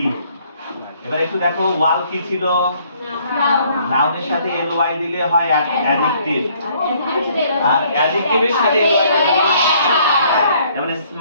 এবার একটু দেখো, ওয়ার্ল্ড কি ছিল? নাউনের সাথে ly দিলে হয় অ্যাডজেক্টিভ, আর অ্যাডজেক্টিভের সাথে ly দিলে হয়, যেমন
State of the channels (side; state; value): both; inverted; correlation -0.63